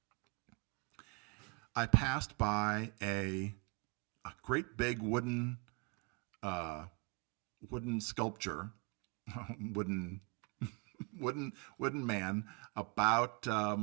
I passed by a great big wooden sculpture, wooden wooden man. About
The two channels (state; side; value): quieter; left; 30.3 dB